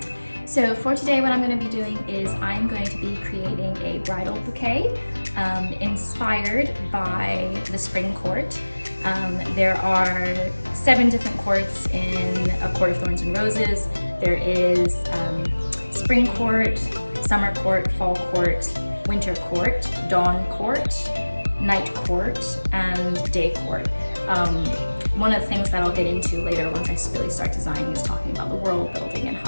for today, what I'm going to be doing is I'm going to be creating a bridal bouquet inspired by the Spring Court. There are 7 different courts in A Court of Thorns and Roses. There is Spring Court, Summer Court, Fall Court, Winter Court, Dawn Court, Night Court, and Day Court. One of the things that I'll get into later once I really start designing is talking about the world building and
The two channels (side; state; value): both; inverted; correlation -1.00